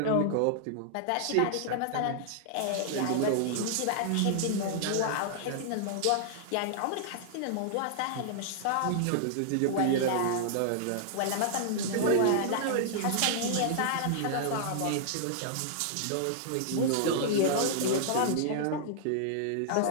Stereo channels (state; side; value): different; both; correlation -0.01